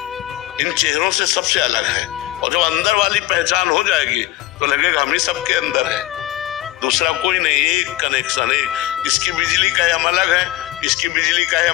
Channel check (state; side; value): quieter; right; 15.6 dB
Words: इन चेहरों से सबसे अलग है। और जब अंदर वाली पहचान हो जाएगी तो लगेगा हम ही सबके अंदर है, दूसरा कोई नहीं, एक कनेक्शन है। इसकी बिजली का हम अलग है, इसकी बिजली का